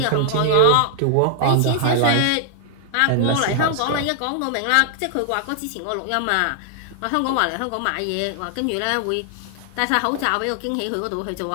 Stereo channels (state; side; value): different; both; correlation -0.01